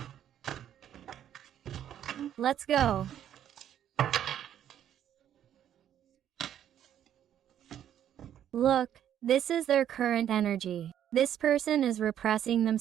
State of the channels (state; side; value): quieter; left; 10.4 dB